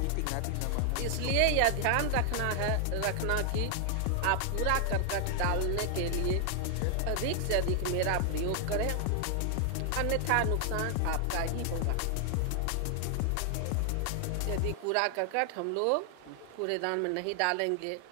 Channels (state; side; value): different; both; correlation 0.00